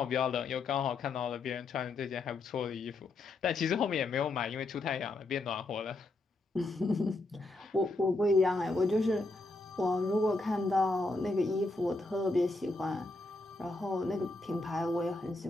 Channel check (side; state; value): right; quieter; 3.1 dB